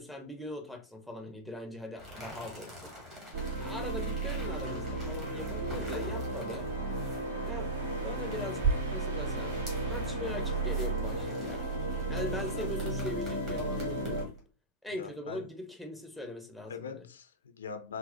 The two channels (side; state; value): both; normal; correlation -0.16